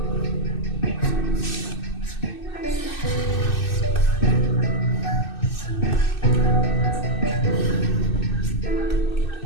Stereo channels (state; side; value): late; right; 2.6 ms